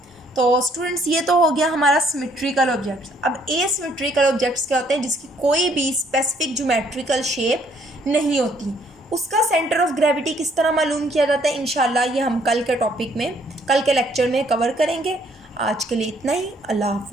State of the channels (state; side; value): normal; both; correlation 0.65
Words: तो स्टूडेंट्स, ये तो हो गया हमारा सिमेट्रिकल ऑब्जेक्ट्स। अब एसिमेट्रिकल ऑब्जेक्ट्स क्या होते हैं, जिसकी कोई भी स्पेसिफिक ज्योमेट्रिकल शेप नहीं होती, उसका सेंटर ऑफ ग्रेविटी किस तरह मालूम किया जाता है, इंशाल्लाह ये हम कल के टॉपिक में, कल के लेक्चर में कवर करेंगे। आज के लिए इतना ही। अल्लाह